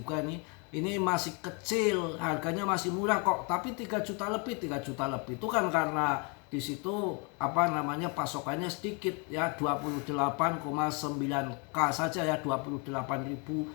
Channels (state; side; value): quieter; right; 33.5 dB